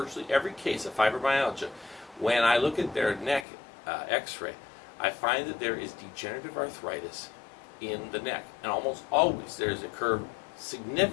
every case of fibromyalgia, when I look at their neck x-ray, I find that there is degenerative arthritis in the neck, and almost always there's a curve,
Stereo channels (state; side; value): drops out; right; at 3.5 s